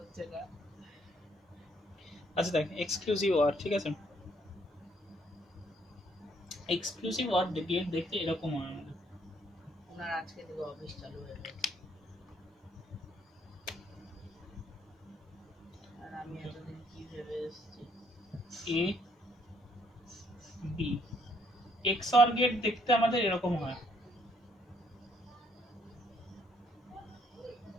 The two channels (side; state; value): both; normal; correlation 0.68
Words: না। আচ্ছা দেখ, এক্সক্লুসিভ অর, ঠিক আছে, এক্সক্লুসিভ অর গেট দেখতে এরকম হয় আমাদের। ওনার আজকে থেকে অফিস চালু হয়ে গেছে, আর আমি এতদিন কি ভেবে এসেছি। এ বি এক্সঅর গেট দেখতে আমাদের এরকম হয়,